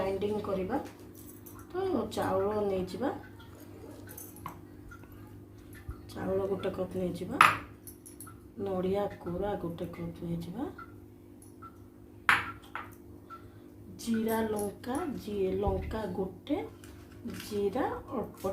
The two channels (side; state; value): both; identical; correlation 1.00